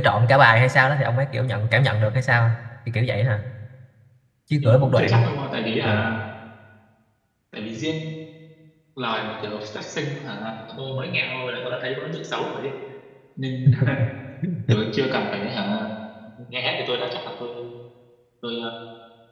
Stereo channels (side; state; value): both; identical; correlation 1.00